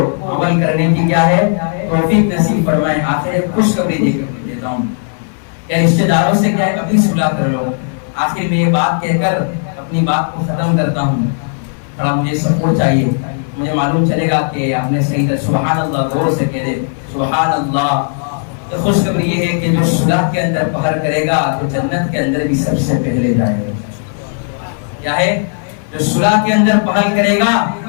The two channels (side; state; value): right; silent; digital silence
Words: عمل کرنے کی کیا ہے توفیق نصیب فرمائے. آخر خوشخبری دے کر دیتا ہوں کہ رشتہ داروں سے کیا ہے اپنی صلح کر لو. آخر میں یہ بات کہہ کر اپنی بات کو ختم کرتا ہوں. تھوڑا مجھے سپورٹ چاہیے, مجھے معلوم چلے گا کہ آپ نے صحیح طرح سبحان اللہ غور سے کہہ دے سبحان اللہ. تو خوشخبری یہ ہے کہ جو صلح کے اندر پہر کرے گا تو جنت کے اندر بھی سب سے پہلے جائے گا. کیا ہے, جو صلح کے اندر پہل کرے گا